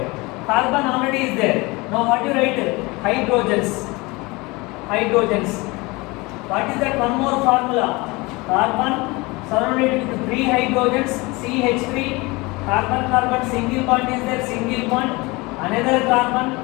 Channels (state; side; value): quieter; right; 24.1 dB